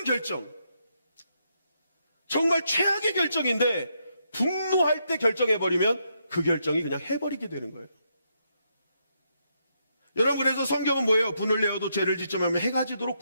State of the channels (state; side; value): inverted; both; correlation -0.79